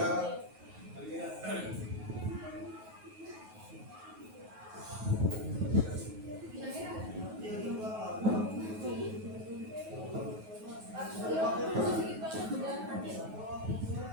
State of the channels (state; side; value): late; left; 9.3 ms